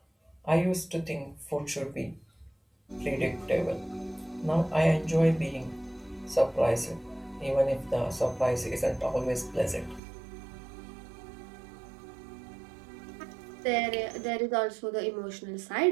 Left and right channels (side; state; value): left; drops out; at 10.0 s